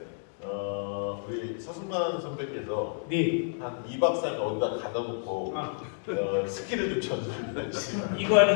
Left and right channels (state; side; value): silent; right; digital silence